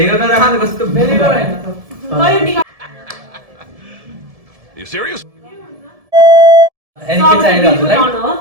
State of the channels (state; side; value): late; left; 1.7 ms